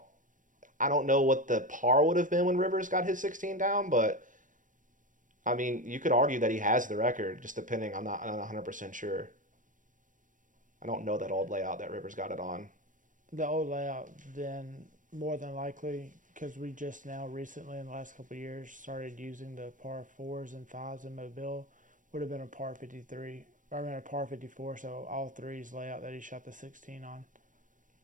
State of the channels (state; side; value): late; left; 0.38 ms